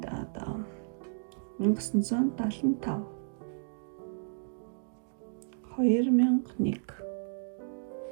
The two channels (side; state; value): left; silent; digital silence